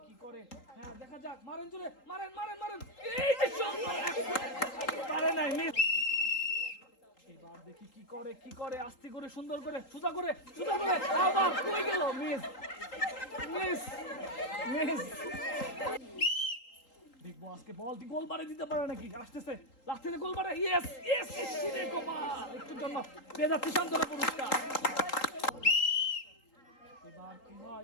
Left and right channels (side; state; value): right; late; 3.8 ms